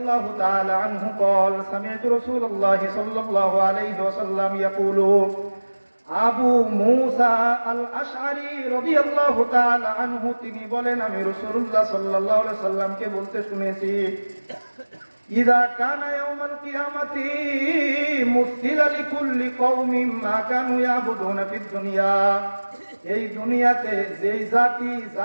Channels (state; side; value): inverted; both; correlation -1.00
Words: تعالى عنه قال سمعت رسول الله صلى الله عليه وسلم يقول আবু মুসা আল আশআরী রাদিয়াল্লাহু তাআলা আনহু তিনি বলেন, আমি রাসূলুল্লাহ সাল্লাল্লাহু আলাইহি সাল্লামকে বলতে শুনেছি, ইযা কানা ইয়াউমাল কিয়ামাতি মুসিলা লিকুল্লি কওমিন মা কানু ইয়াবুদুনা ফিদ দুনিয়া। এই দুনিয়াতে যেই জাতি